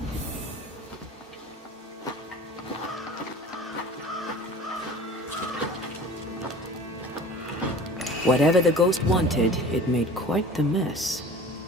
Whatever the ghost wanted, it made quite the mess.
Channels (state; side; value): normal; both; correlation 0.42